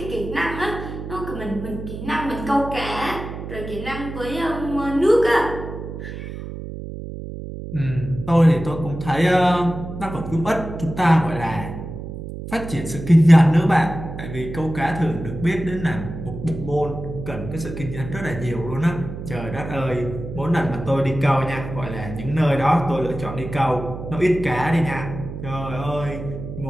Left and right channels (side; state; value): right; noise; hum, 9 dB below the sound